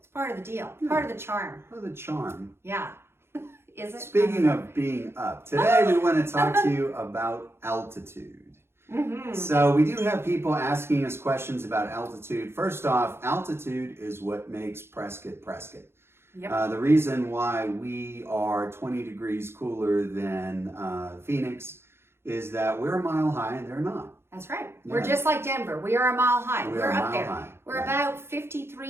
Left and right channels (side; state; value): left; late; 0.12 ms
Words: part of the deal. Yeah. Part of the charm. Part of the charm. Yeah. Is it? Speaking of being up, today we want to talk to you about altitude. Mm-hmm. So we do have people asking us questions about altitude. First off, altitude is what makes Prescott Prescott. Yep. The reason why we are 20 degrees cooler than Phoenix is that we're a mile high and they're not. That's right. Yeah. We're just like Denver. We are a mile high. We We're are a up mile there. high. We're Yeah. about